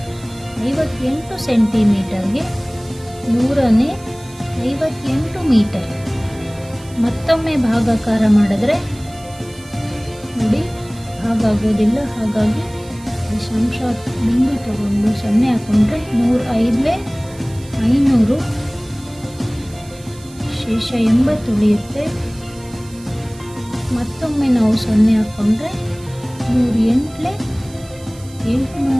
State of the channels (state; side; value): noise; right; hiss, 22 dB below the sound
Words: 58 ಸೆಂಟಿಮೀಟರ್ಗೆ 100ನೇ 58 ಮೀಟರ್. ಮತ್ತೊಮ್ಮೆ ಭಾಗಾಕಾರ ಮಾಡಿದ್ರೆ ನೋಡಿ ಭಾಗ ಆಗೋದಿಲ್ಲ. ಹಾಗಾಗಿ ದಶಾಂಶ ಬಿಂದು ತಗೊಂಡು 0 ಹಾಕೊಂಡ್ರೆ 105 500 ಶೇಷ 80 ಉಳಿಯುತ್ತೆ. ಮತ್ತೊಮ್ಮೆ ನಾವು 0 ಹಾಕೊಂಡ್ರೆ 108